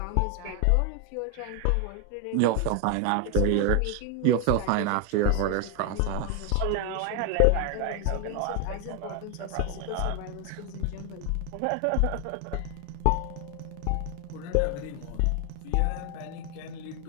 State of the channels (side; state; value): both; different; correlation 0.01